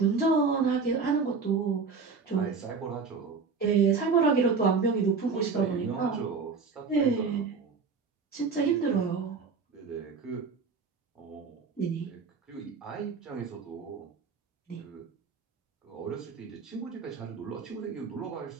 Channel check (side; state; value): left; quieter; 5.0 dB